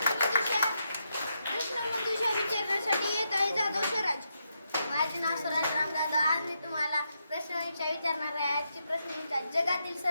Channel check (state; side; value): inverted; both; correlation -0.82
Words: प्रश्नमंजुषा विचारण्यासाठी येत आहे जाधव स्वराज. माझे नाव स्वराज रामदादा. आज मी तुम्हाला प्रश्नमंजुषा विचारणार आहे. आजची प्रश्नमंजुषा: जगातील